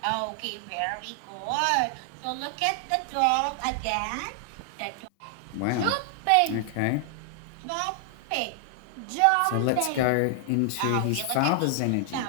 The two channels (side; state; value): both; different; correlation 0.00